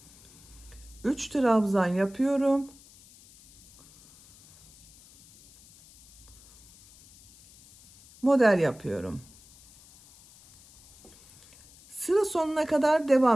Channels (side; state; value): left; noise; hiss, 25 dB below the sound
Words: 3 trabzan yapıyorum. Model yapıyorum. Sıra sonuna kadar